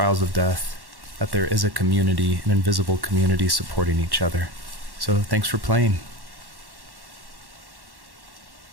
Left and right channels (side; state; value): left; late; 1.1 ms